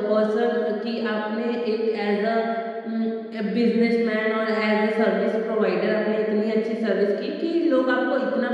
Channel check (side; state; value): both; identical; correlation 1.00